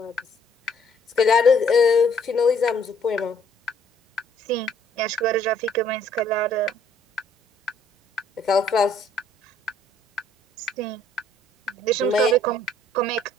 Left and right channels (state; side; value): normal; both; correlation 0.62